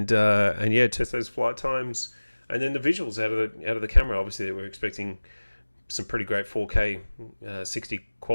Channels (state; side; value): inverted; both; correlation -1.00